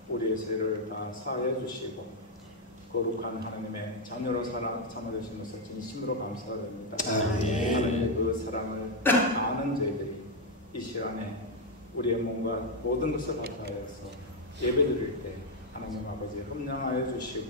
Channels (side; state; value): both; normal; correlation 0.02